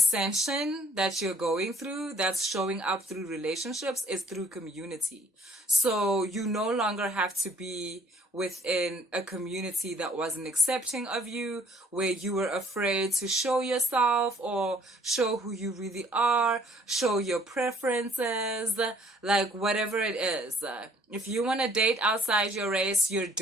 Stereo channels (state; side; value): normal; both; correlation 0.58